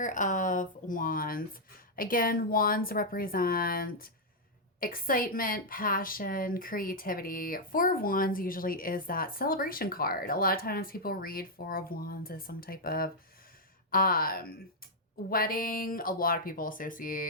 of Wands. Again, wands represent excitement, passion, creativity. Four of Wands usually is that celebration card. A lot of times people read Four of Wands as some type of um, wedding. A lot of people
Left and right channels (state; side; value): normal; both; correlation -0.04